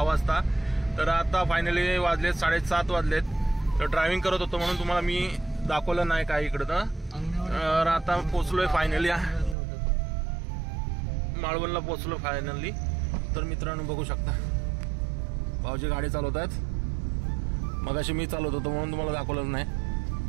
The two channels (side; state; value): left; drops out; at 9.6 s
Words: वाजता. तर आता फायनली वाजलेत 7:30 वाजलेत. तर ड्रायव्हिंग करत होतो म्हणून तुम्हाला मी दाखवलं नाही काय इकडं. तर आता पोचलोय फायनली माळवणला पोचलो फायनली. तर मित्रांनो बघू शकता भाऊजी गाडी चालवत आहेत. मगाशी मी चालवत होतो म्हणून तुम्हाला दाखवलं नाही.